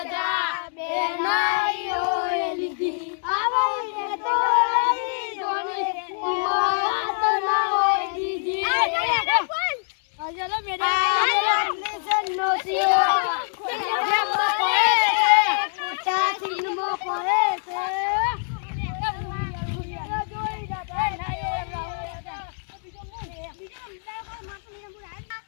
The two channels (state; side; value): silent; right; digital silence